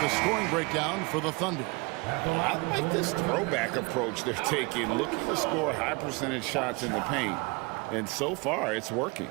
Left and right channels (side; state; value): left; quieter; 27.6 dB